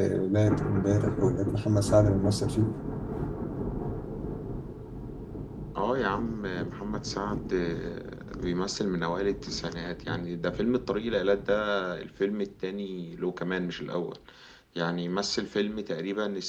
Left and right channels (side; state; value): both; identical; correlation 1.00